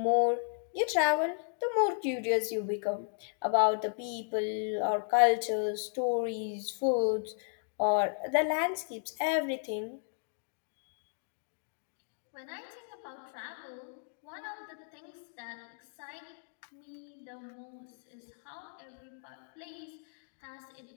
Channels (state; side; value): silent; right; digital silence